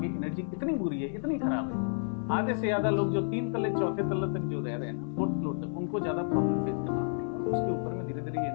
एनर्जी इतनी बुरी है, इतनी खराब है। आधे से ज्यादा लोग जो 3 तल्ले 4थे तल्ले तक जो रह रहे हैं ना, 4th फ्लोर तक, उनको ज्यादा प्रॉब्लम फेस करना पड़ेगा। उसके ऊपर में धीरे धीरे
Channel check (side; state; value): right; silent; digital silence